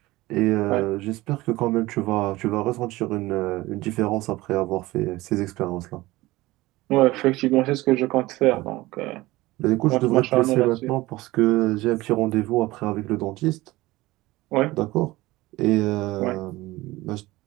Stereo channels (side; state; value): left; quieter; 19.2 dB